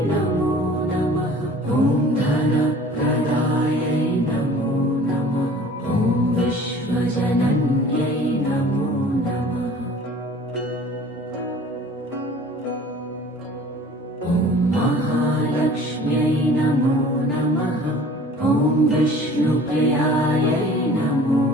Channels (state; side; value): normal; both; correlation 0.47